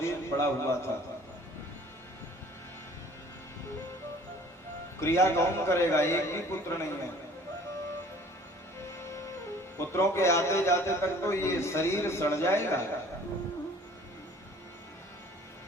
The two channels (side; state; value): both; normal; correlation 0.51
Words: पड़ा हुआ था। क्रिया कौन करेगा? एक भी पुत्र नहीं है। पुत्रों के आते जाते तक तो ये शरीर सड़ जाएगा।